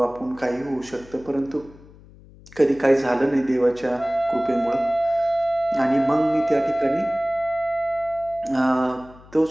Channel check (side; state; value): left; noise; hum, 23 dB below the sound